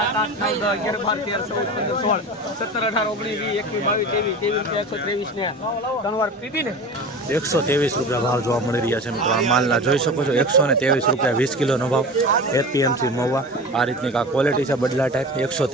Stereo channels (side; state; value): both; normal; correlation 0.32